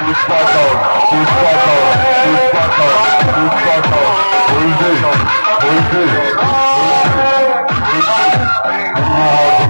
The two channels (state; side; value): inverted; both; correlation -1.00